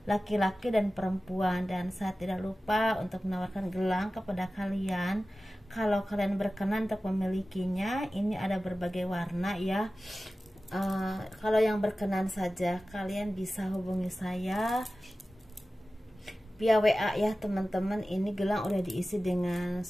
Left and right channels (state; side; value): normal; both; correlation 0.96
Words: laki-laki dan perempuan. Dan saya tidak lupa untuk menawarkan gelang kepada kalian. Kalau kalian berkenan untuk memilikinya, ini ada berbagai warna ya. Kalau yang berkenan saja kalian bisa hubungi saya via WA ya teman-teman. Ini gelang udah diisi dengan